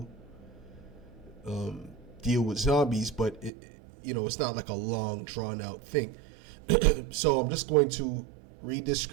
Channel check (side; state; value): left; drops out; at 3.5 s